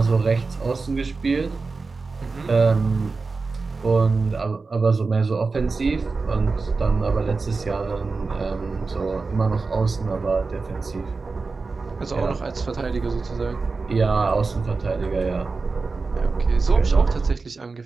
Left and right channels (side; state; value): left; quieter; 4.1 dB